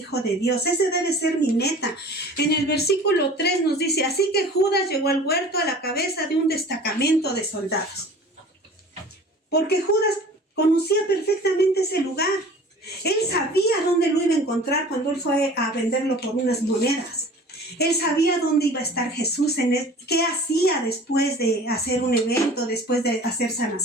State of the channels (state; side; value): normal; both; correlation 0.44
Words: de Dios. Ese debe ser mi meta. En el versículo 3 nos dice, así que Judas llegó al huerto a la cabeza de un destacamento de soldados. Porque Judas conocía perfectamente ese lugar. Él sabía dónde lo iba a encontrar cuando él fue a venderlo por unas monedas. Él sabía dónde iba a estar Jesús, qué hacía después de hacer un evento, después de hacer